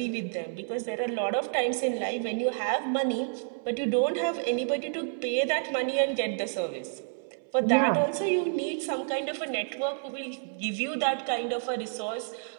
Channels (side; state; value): left; silent; 58 dB below the other